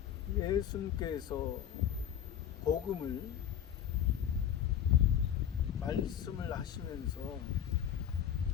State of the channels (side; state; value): right; quieter; 9.7 dB